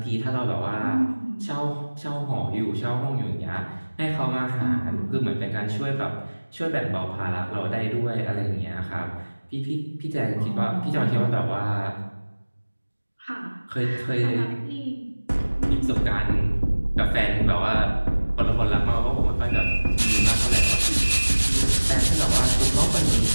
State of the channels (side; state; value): both; inverted; correlation -1.00